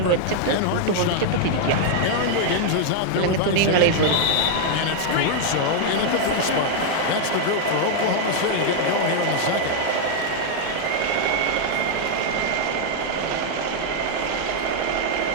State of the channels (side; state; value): both; different; correlation 0.00